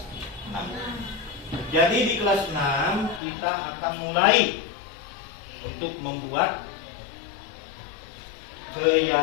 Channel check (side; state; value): right; drops out; at 3.2 s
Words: 6. Jadi di kelas 6 kita akan mulai untuk membuat